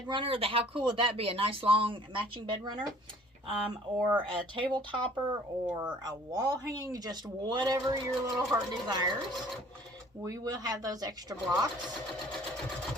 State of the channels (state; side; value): normal; both; correlation 0.53